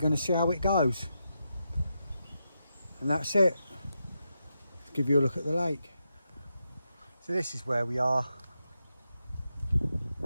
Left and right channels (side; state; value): both; inverted; correlation -0.86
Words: see how it goes. And that's it. Let's give you a look at the lake. So this is where we are.